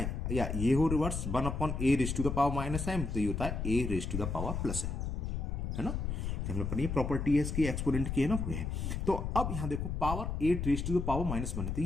या ये हो reverse 1 upon a raise to the power -m, तो ये होता है a raise to the power +m, है ना. तो हमने पढ़ी प्रॉपर्टी है इसकी, एक्सपोनेंट की है ना, है. तो अब यहां देखो power 8 raise to the power -1 है, तो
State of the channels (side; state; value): left; noise; rumble, 2 dB below the sound